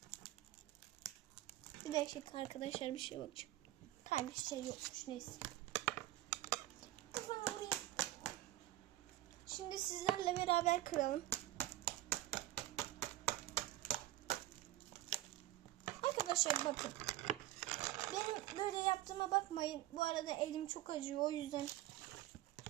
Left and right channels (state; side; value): quieter; left; 15.5 dB